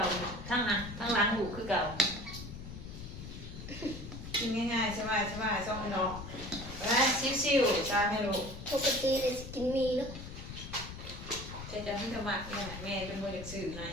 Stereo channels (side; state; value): left; noise; rumble, 10 dB below the sound